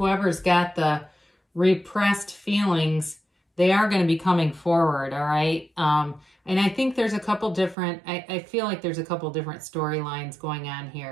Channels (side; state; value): left; drops out; at 7.8 s